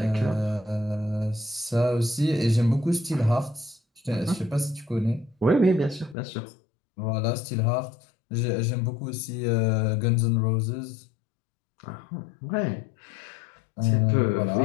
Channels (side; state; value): right; drops out; at 6.2 s